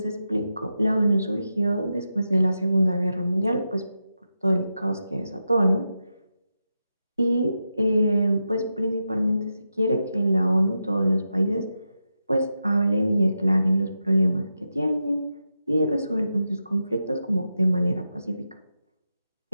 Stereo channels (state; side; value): inverted; both; correlation -0.89